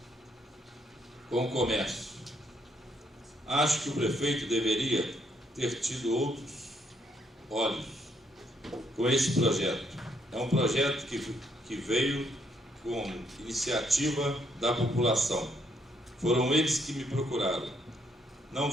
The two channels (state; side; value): normal; both; correlation 0.72